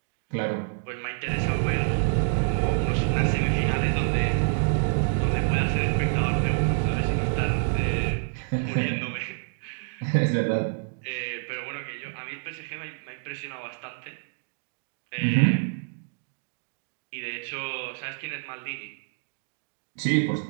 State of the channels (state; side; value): silent; left; digital silence